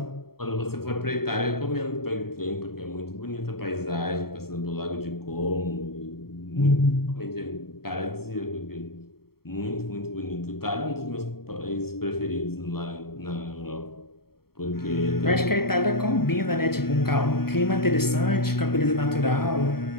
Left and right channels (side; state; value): right; late; 0.95 ms